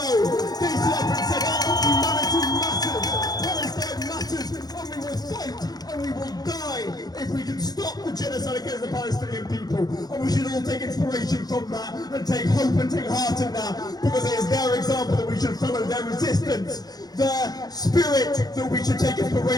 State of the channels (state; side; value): late; right; 0.19 ms